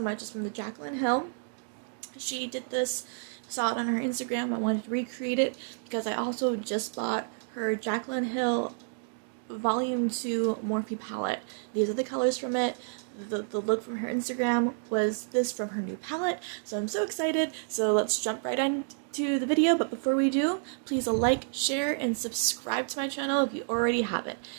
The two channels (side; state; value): left; silent; digital silence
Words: It's from the Jaclyn Hill. She did this, saw it on her Instagram. I wanted to recreate it because I also just bought her Jaclyn Hill Volume 2 Morphe palette. These are the colors from it. The look from her Instagram was this from her new palette, so I'm so excited. So let's jump right into the video, but before we do, please like, share, and subscribe to my channel if you already haven't.